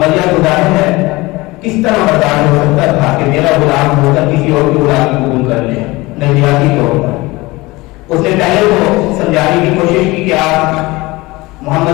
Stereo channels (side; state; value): right; quieter; 21.5 dB